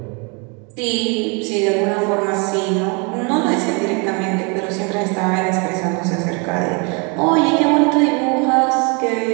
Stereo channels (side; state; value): left; quieter; 32.5 dB